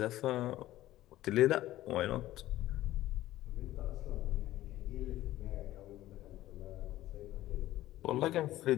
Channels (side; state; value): right; quieter; 15.0 dB